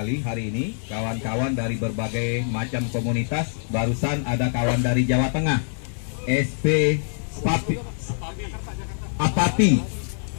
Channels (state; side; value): silent; right; 58 dB below the other